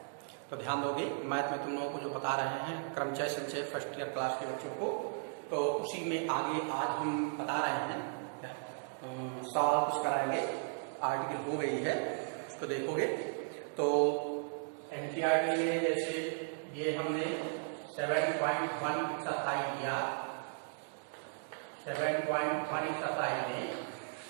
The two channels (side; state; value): left; silent; digital silence